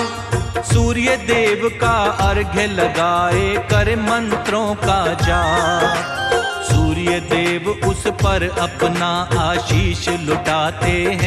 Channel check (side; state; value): both; identical; correlation 1.00